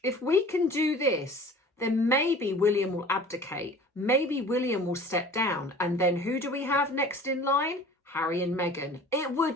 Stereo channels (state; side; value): normal; both; correlation 0.44